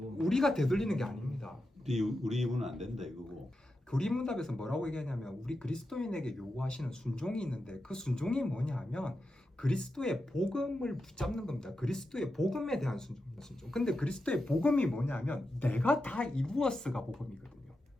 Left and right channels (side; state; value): both; normal; correlation 0.89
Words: 되돌리는 게 아닙니다. 우리 입은 안 된다 이거고. 교리문답에서 뭐라고 얘기하냐면 우리 그리스도인에게 요구하시는 순종이 있는데 그 순종이 뭐냐 하면 그리스도의 복음을 붙잡는 겁니다. 그리스도의 복음에 대한 순종. 근데 그리스도의 복음이 뭐냐면 내가 다 이루었어가 복음이거든요.